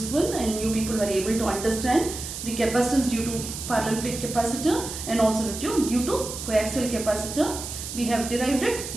and you people were able to understand the capacitance due to parallel plate capacitor and also due to coaxial capacitor. We have derived it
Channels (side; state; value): right; noise; hiss, 8 dB below the sound